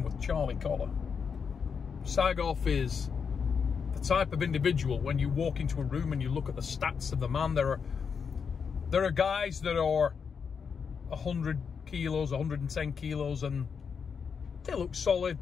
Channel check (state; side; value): quieter; right; 6.2 dB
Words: with Charlie Collar. Sagov is the type of individual, when you walk into a room and you look at the stats of the man, there are guys that are 100 kilos, 110 kilos, and they look solid,